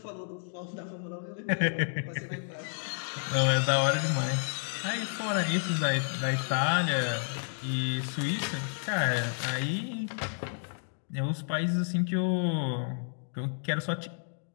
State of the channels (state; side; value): silent; right; digital silence